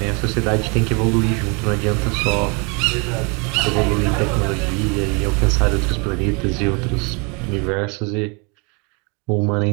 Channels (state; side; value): quieter; left; 32.0 dB